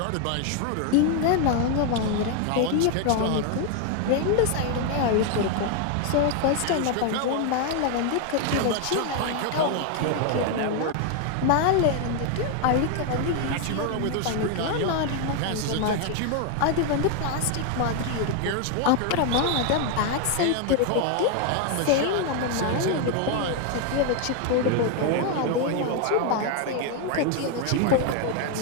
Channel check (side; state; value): both; different; correlation 0.01